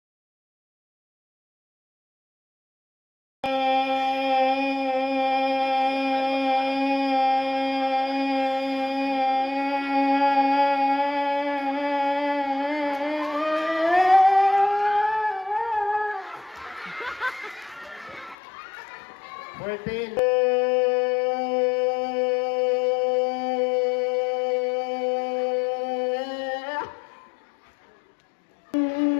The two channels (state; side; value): drops out; right; at 18.4 s